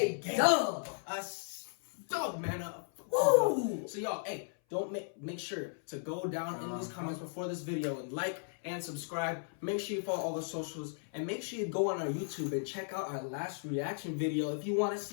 dub. A dub, man. Woo. So y'all, hey, don't make sure to go down in these comments before this video and like and subscribe. Make sure you follow all the socials and make sure you go on our YouTube and check out our last reaction video if you want to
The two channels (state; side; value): silent; right; 54 dB below the other